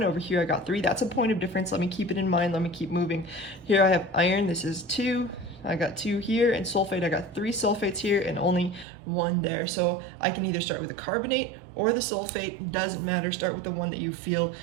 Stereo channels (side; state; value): left; drops out; at 8.8 s